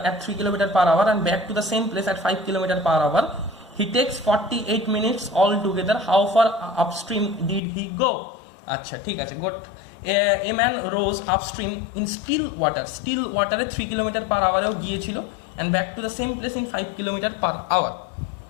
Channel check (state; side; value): drops out; right; at 7.6 s